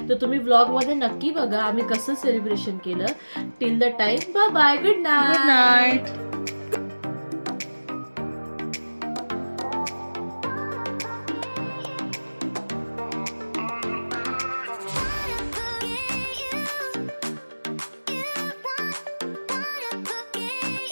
तर तुम्ही व्लॉगमध्ये नक्की बघा आम्ही कसं सेलिब्रेशन केलं. Till the time bye bye, good night. Good night.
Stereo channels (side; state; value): both; inverted; correlation -1.00